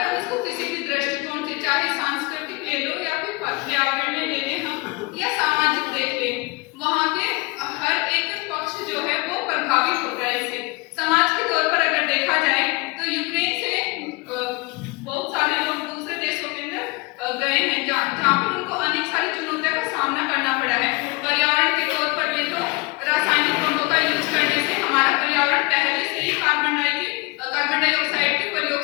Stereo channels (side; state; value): right; quieter; 26.1 dB